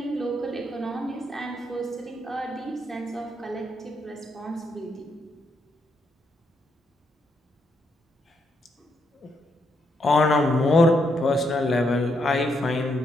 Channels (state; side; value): normal; both; correlation 0.78